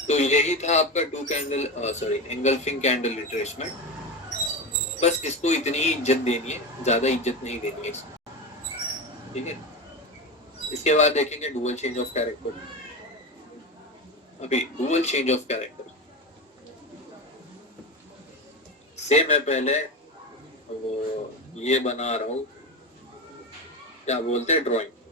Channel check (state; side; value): normal; both; correlation 0.20